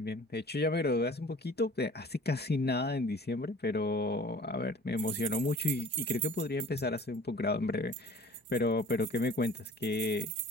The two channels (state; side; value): normal; both; correlation 0.47